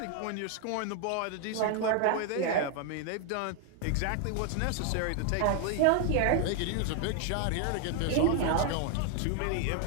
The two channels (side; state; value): both; different; correlation 0.00